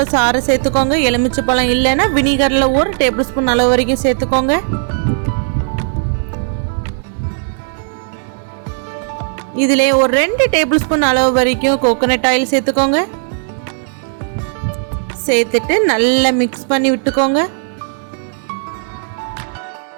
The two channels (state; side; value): silent; left; digital silence